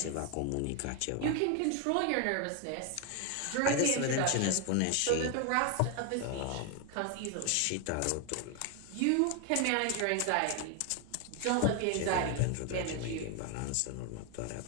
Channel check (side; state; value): both; different; correlation 0.01